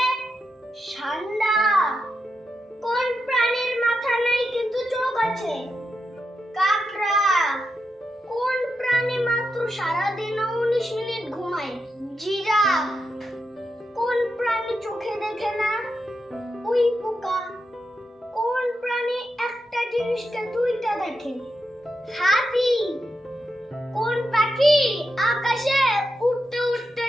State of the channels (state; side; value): normal; both; correlation 0.86